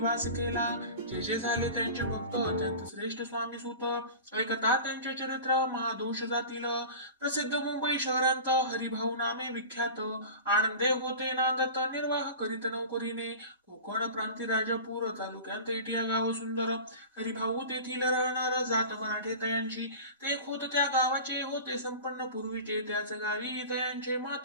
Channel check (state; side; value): inverted; both; correlation -0.34